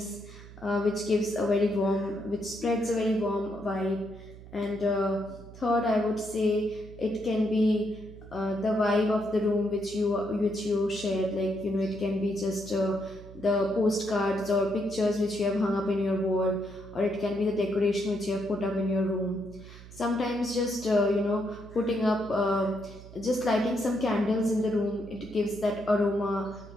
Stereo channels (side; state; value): right; noise; hum, 17 dB below the sound